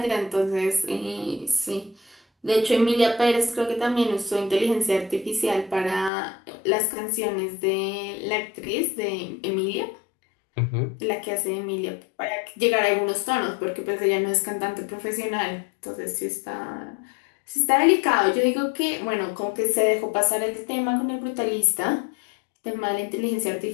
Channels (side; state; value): right; drops out; at 6.1 s